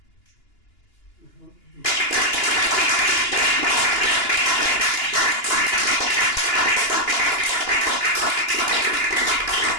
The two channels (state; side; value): late; right; 2.9 ms